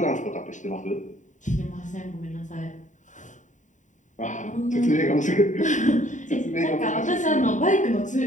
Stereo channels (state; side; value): late; right; 0.36 ms